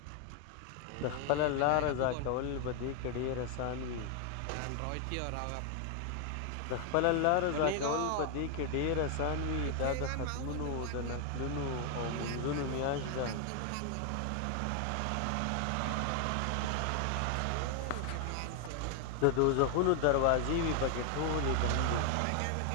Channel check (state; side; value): different; both; correlation 0.01